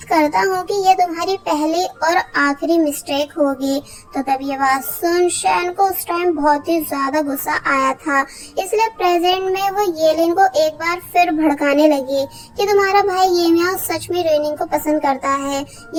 करता हूँ कि ये तुम्हारी पहली और आखिरी मिस्टेक होगी। तो तब ये बात सुन शैन को उस टाइम बहुत ही ज्यादा गुस्सा आया था, इसलिए प्रेजेंट में वो येलिन को एक बार फिर भड़काने लगी कि तुम्हारा भाई ये मियाओ सच में रेनिंग को पसंद करता है,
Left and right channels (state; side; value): identical; both; correlation 1.00